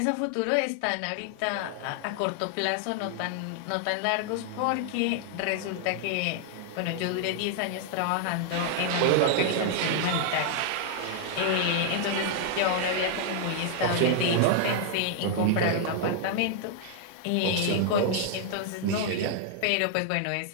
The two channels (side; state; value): both; different; correlation -0.01